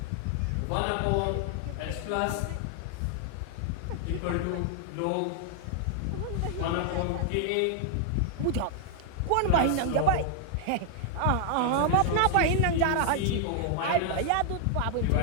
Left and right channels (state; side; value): different; both; correlation 0.00